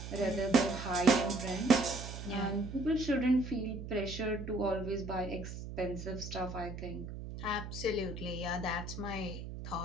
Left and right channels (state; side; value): noise; right; hum, 9 dB below the sound